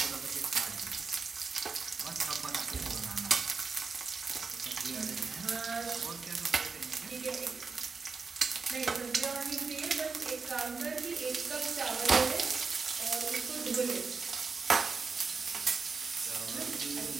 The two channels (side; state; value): left; quieter; 4.8 dB